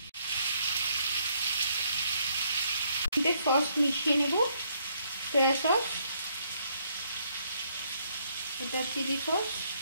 সস মিশিয়ে নেব, সয়া সস, এটা চিলি সস,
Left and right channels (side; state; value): both; inverted; correlation -0.70